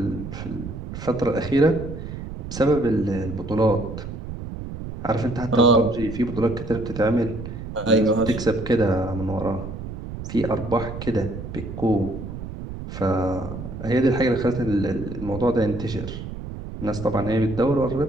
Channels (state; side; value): noise; right; rumble, 9 dB below the sound